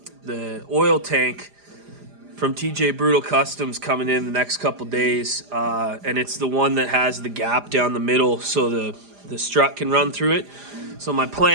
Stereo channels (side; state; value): left; late; 4.9 ms